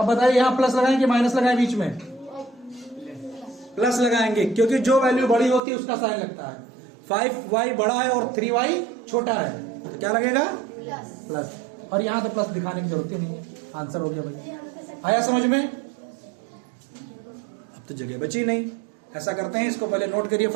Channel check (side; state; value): left; drops out; at 5.6 s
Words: बताइए यहाँ प्लस लगाएं कि माइनस लगाएं? बीच में प्लस लगाएंगे, क्योंकि जो वैल्यू बड़ी होती है उसका साइन लगता है। 5y बड़ा है और 3y छोटा है, तो क्या लगेगा? प्लस। और यहाँ तो प्लस दिखाने की जरूरत ही नहीं है, आंसर हो गया भाई। आया समझ में? अब तो जगह बची नहीं। ऐसा करते हैं, इसको पहले नोट करिए